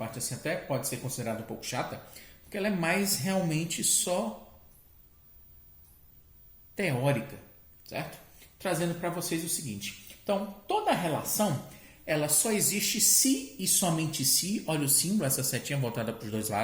assim até pode ser considerada um pouco chata, porque ela é mais realmente só teórica, certo? Trazendo para vocês o seguinte. Então, toda relação, ela só existe se e somente se, olha o símbolo, essa setinha voltada para os dois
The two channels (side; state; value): both; identical; correlation 1.00